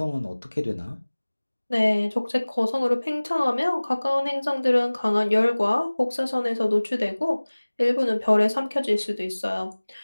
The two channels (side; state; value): both; inverted; correlation -1.00